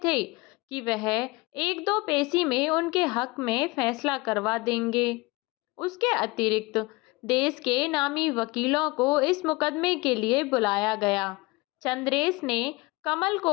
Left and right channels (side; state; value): right; quieter; 23.6 dB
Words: कि वह 1-2 पेशी में उनके हक में फैसला करवा देंगे। उसके अतिरिक्त देश के नामी वकीलों को इस मुकदमे के लिए बुलाया गया। चंद्रेश ने कमल